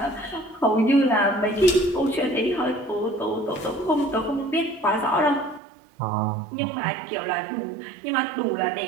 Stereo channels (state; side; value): drops out; left; at 5.6 s